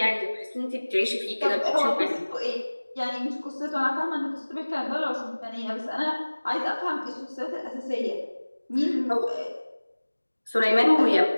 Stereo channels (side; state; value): both; inverted; correlation -1.00